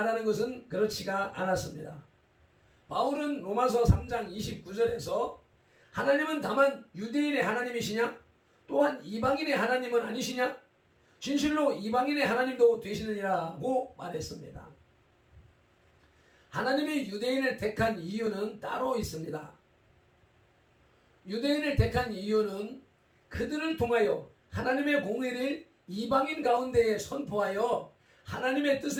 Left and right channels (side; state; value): both; identical; correlation 1.00